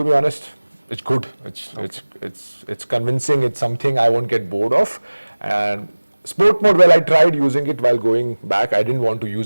be honest, it's good. It's convincing. It's something I won't get bored of. And sport mode, well, I tried using it while going back. I didn't want to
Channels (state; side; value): inverted; both; correlation -1.00